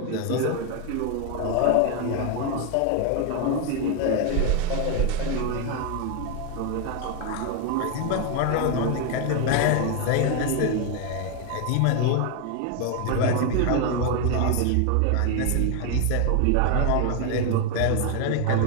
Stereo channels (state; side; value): different; both; correlation 0.01